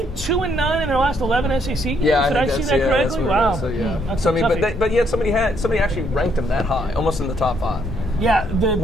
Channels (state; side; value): normal; both; correlation 0.71